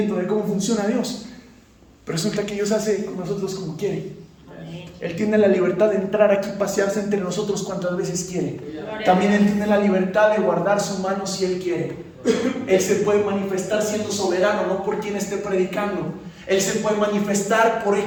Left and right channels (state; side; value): identical; both; correlation 1.00